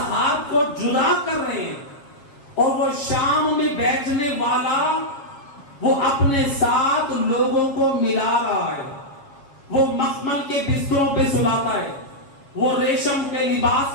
کو جدا کر رہے ہیں، اور وہ شام میں بیٹھنے والا وہ اپنے ساتھ لوگوں کو ملا رہا ہے. وہ مخمل کے بستروں پہ سلاتا ہے، وہ ریشم کے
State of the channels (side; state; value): right; late; 7.2 ms